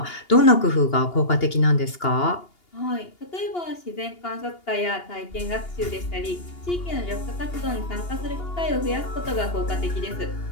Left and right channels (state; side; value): late; right; 2.8 ms